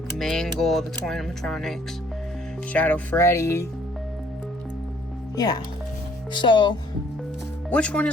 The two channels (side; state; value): both; normal; correlation 0.61